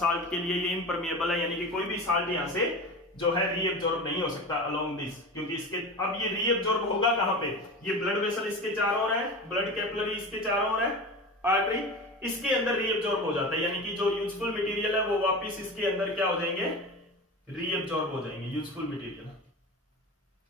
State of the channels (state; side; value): normal; both; correlation 0.29